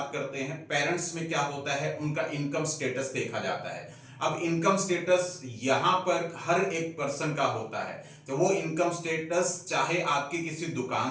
करते हैं। पेरेंट्स में क्या होता है, उनका इनकम स्टेटस देखा जाता है। अब इनकम स्टेटस यहां पर हर एक पर्सन का होता है, तो वो इनकम स्टेटस चाहे आपकी किसी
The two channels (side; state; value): both; identical; correlation 1.00